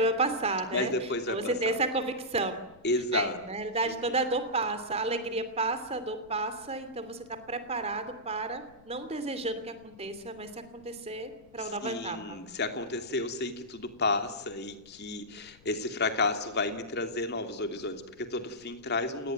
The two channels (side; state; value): left; noise; rumble, 26 dB below the sound